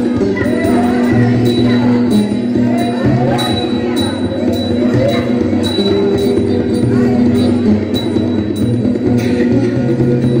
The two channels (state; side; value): identical; both; correlation 1.00